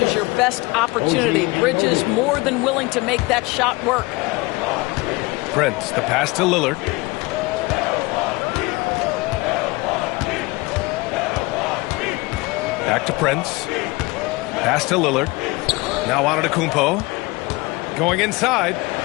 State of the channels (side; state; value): right; quieter; 23.5 dB